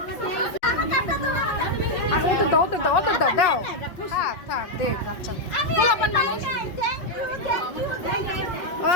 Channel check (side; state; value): right; late; 5.5 ms